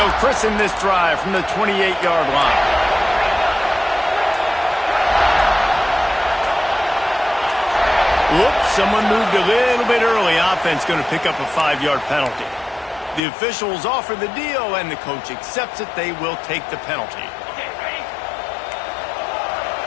christen this drive from the 28-yard line. Whoops, someone moved a little bit early. Offense going to pick up a 5-yard penalty. The officials offer the deal, and the coach accepts it. They will take the penalty. Okay, ready?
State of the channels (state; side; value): drops out; right; at 13.2 s